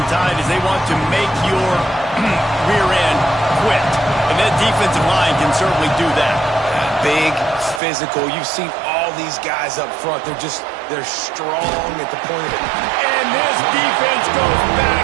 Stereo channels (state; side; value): drops out; left; at 7.8 s